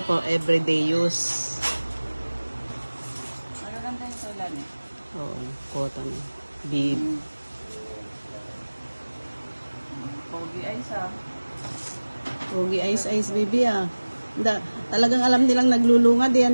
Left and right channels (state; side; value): inverted; both; correlation -1.00